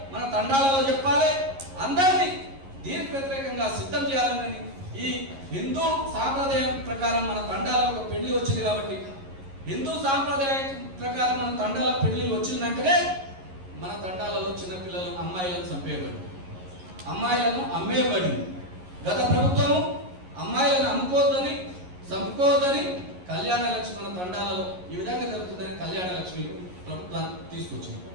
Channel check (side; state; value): left; late; 11 ms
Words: మన తండాలలో చెప్పాలి, అందరినీ దీనికి వ్యతిరేకంగా సిద్ధం చేయాలని. ఈ హిందూ సాంప్రదాయం ప్రకారం మన తండాలలో ఒక పెళ్లి వచ్చింది. కాబట్టి హిందూ సాంప్రదాయం ప్రకారం మన తండాల పెళ్లి వచ్చినాకనే మన తండాలలో చిన్నపిల్లలు అమ్మాయిలను చంపేయబడి, అమ్మాయిలను అమ్మేయబడింది. గత ప్రభుత్వము అమ్మాయిలను అమ్ముకోవద్దని, చంపుకోవద్దని కళ్యాణ లక్ష్మి మన తండాలలో ఈ విధంగా జరుగుతుందని కళ్యాణ లక్ష్మి ప్రభుత్వాన్ని తీసుకొచ్చింది.